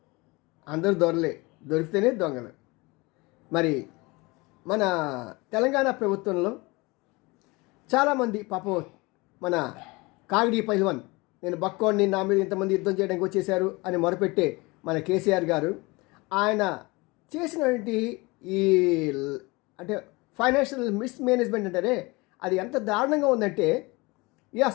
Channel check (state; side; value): quieter; right; 24.5 dB